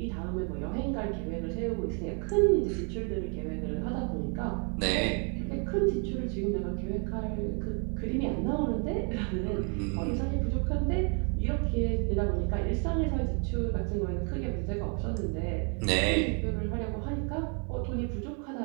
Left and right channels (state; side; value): quieter; left; 38.9 dB